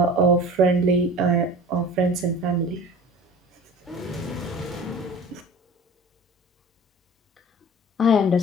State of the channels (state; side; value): normal; both; correlation 0.41